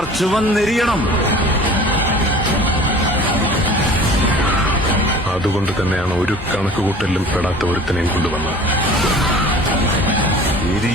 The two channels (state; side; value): normal; both; correlation 0.45